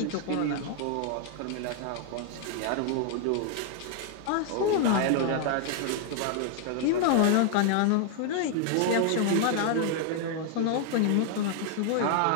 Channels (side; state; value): both; different; correlation 0.00